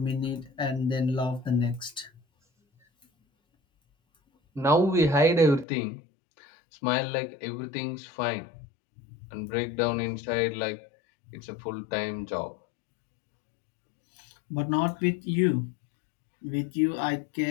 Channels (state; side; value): drops out; right; at 5.7 s